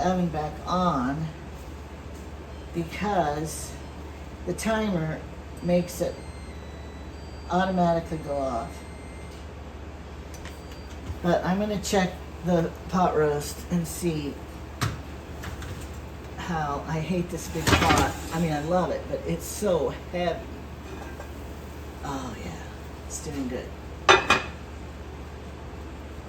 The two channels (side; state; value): both; identical; correlation 1.00